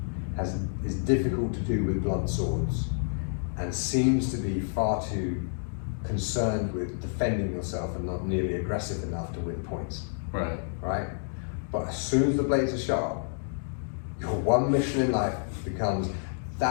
is difficult to do with blunt swords, and seems to be far too concerned with defending yourself and not nearly aggressive enough to win points. Right. Right? But as soon as the blades are sharp, your one mission in life becomes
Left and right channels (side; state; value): right; silent; digital silence